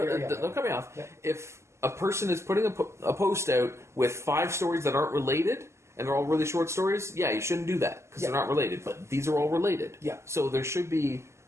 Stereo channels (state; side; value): late; left; 0.13 ms